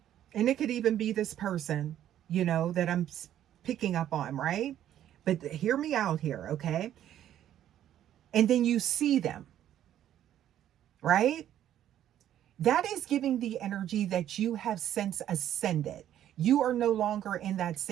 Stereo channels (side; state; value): left; quieter; 11.4 dB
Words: and it could even be this person, you know, that I'm picking up on, right? But hear me out here, okay? And then you see them, right? That is giving the energy that you have since ascended. You are no longer in that